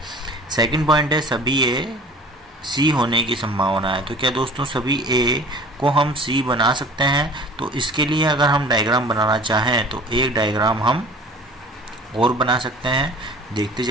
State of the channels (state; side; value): normal; both; correlation 0.46